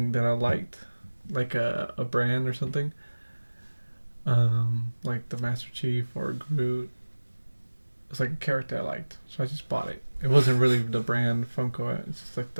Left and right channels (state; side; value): inverted; both; correlation -1.00